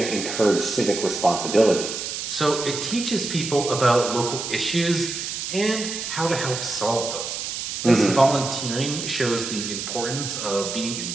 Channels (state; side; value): noise; right; hiss, 5 dB below the sound